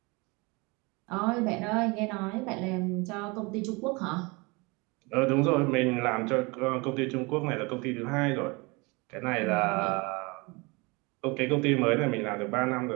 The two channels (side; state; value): left; quieter; 27.0 dB